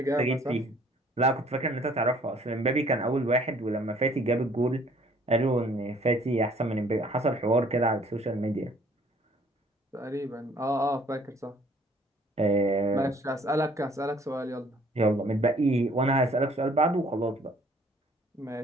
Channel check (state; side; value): normal; both; correlation 0.58